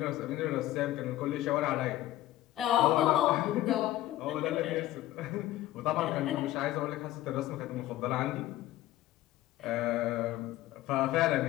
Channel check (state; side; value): quieter; right; 15.2 dB